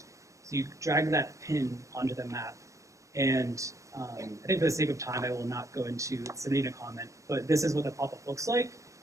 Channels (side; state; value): left; late; 0.15 ms